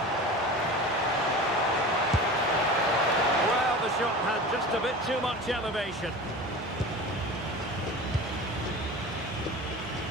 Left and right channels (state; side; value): normal; both; correlation 0.34